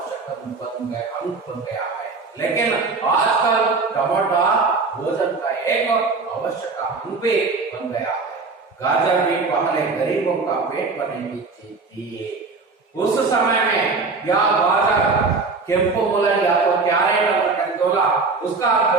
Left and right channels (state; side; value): quieter; left; 4.2 dB